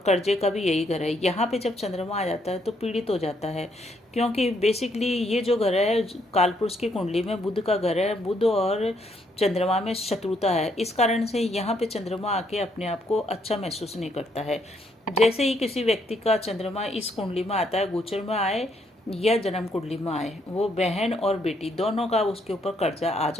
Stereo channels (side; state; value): both; normal; correlation 0.72